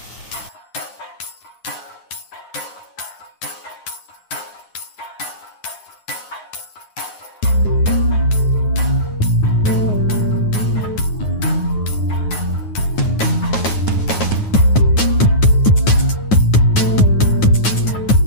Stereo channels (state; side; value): late; right; 9.6 ms